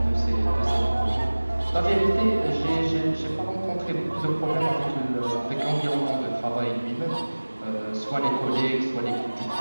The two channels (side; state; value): both; inverted; correlation -1.00